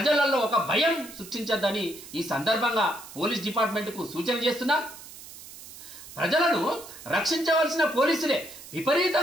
ఒక భయం సృష్టించద్దని ఈ సందర్భంగా పోలీస్ డిపార్ట్మెంట్కు సూచన చేస్తున్నాం. ప్రజలను రక్షించవలసిన పోలీసులే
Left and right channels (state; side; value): noise; right; hiss, 16 dB below the sound